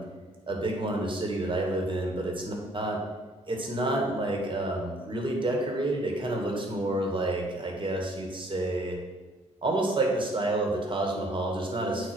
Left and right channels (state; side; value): normal; both; correlation 0.61